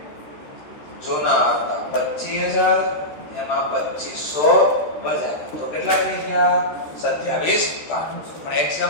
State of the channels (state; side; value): late; right; 13 ms